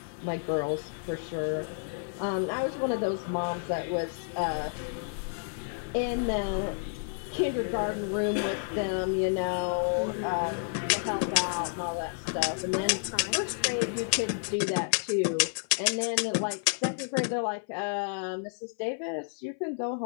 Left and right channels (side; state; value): right; silent; 58 dB below the other